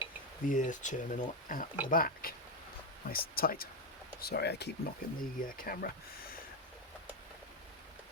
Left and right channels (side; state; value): both; normal; correlation 0.08